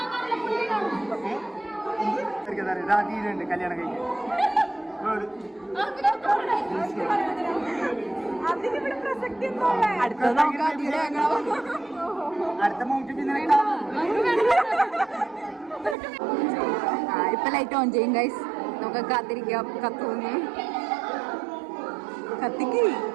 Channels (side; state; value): left; drops out; at 16.0 s